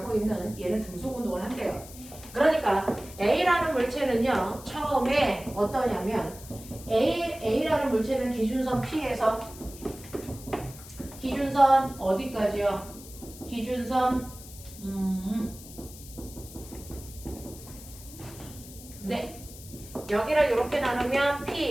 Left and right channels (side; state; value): left; noise; hiss, 17 dB below the sound